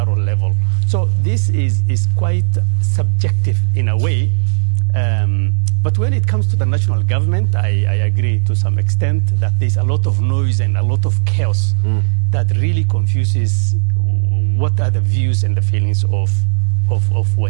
level. So this is quite subjective in a way. But when it comes to the national government, I agree to some extent that there's a lot of noise and a lot of chaos that really confuses what are the views and the feelings of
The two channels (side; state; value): left; silent; digital silence